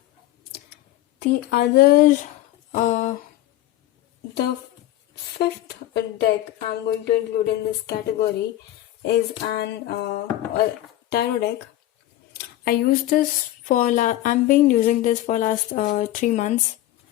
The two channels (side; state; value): right; quieter; 14.5 dB